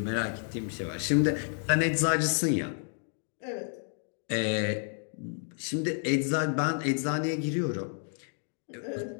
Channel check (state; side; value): silent; right; 57 dB below the other